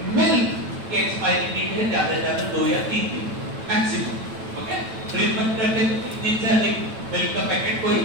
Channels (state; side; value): late; left; 9.1 ms